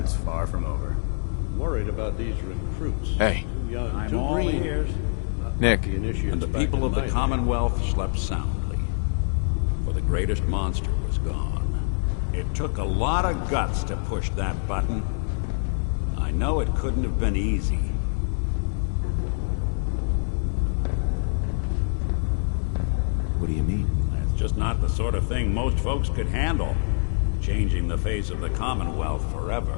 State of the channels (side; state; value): right; silent; digital silence